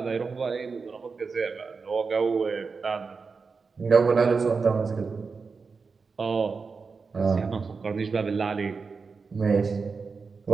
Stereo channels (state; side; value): quieter; left; 4.8 dB